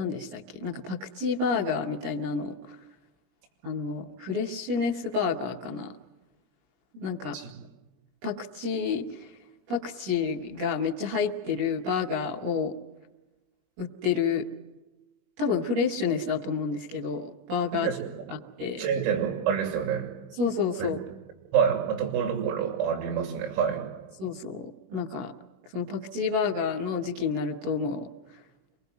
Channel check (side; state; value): left; late; 21 ms